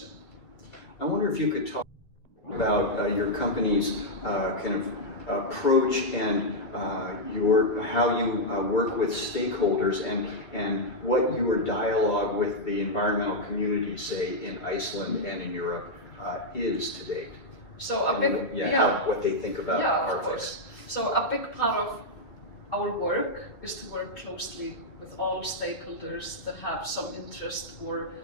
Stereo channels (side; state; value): right; late; 2.4 ms